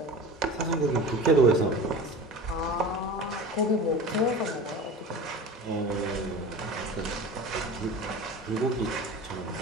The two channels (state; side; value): normal; both; correlation 0.35